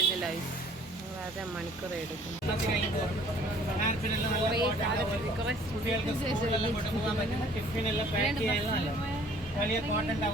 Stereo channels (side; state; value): both; normal; correlation 0.55